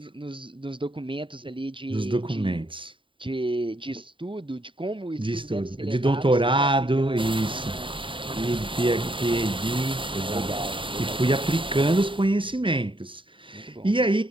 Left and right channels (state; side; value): late; left; 0.25 ms